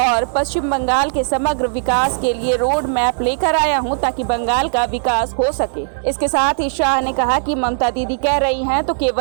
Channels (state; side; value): silent; left; digital silence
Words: पश्चिम बंगाल के समग्र विकास के लिए रोड मैप लेकर आया हूं ताकि बंगाल का विकास हो सके। इसके साथ ही शाह ने कहा कि ममता दीदी कह रही हैं तो